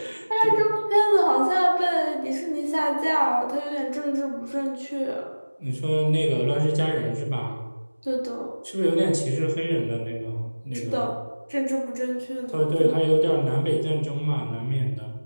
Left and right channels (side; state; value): both; inverted; correlation -1.00